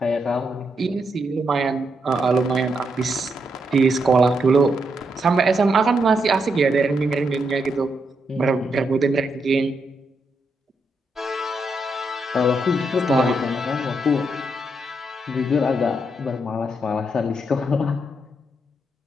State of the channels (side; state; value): both; normal; correlation 0.81